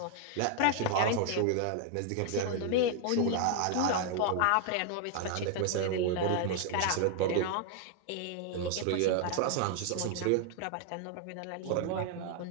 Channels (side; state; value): both; different; correlation 0.00